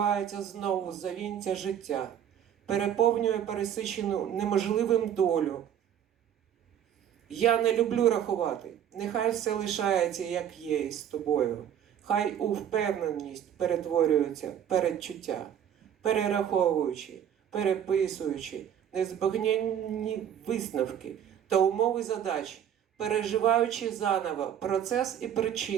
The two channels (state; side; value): quieter; left; 9.6 dB